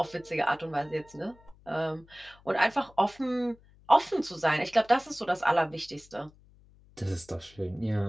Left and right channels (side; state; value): left; noise; hum, 27 dB below the sound